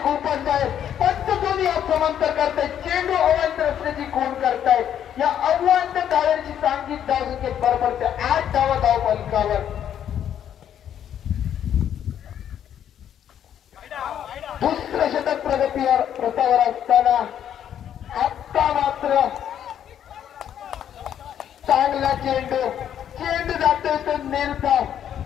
आहे. पंचदोनी समांतर करतायत. चेंडू अवांतर असल्याची खूण करतायत. या अवांतर धावांची सांघिक धावसंख्येत बरोबर 8 धावा धाव फलकावर. दुसरं षटक प्रगतीवर प्रतावर असताना आता मात्र चांगला चेंडू जातोय तो निर्धाव.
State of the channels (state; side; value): quieter; right; 9.8 dB